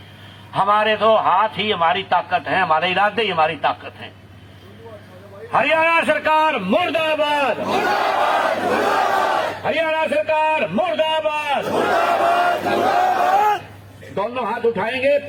हमारे तो हाथ ही हमारी ताकत है, हमारे इरादे ही हमारी ताकत है। हरियाणा सरकार मुर्दाबाद, हरियाणा सरकार मुर्दाबाद। दोनों हाथ उठाएंगे,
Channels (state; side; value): identical; both; correlation 1.00